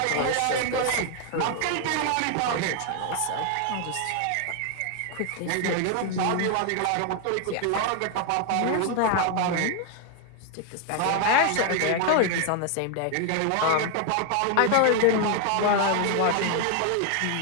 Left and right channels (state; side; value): different; both; correlation 0.00